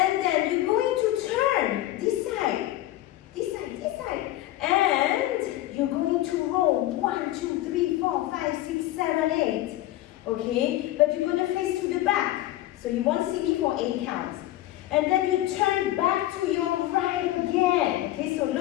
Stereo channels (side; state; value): right; quieter; 15.2 dB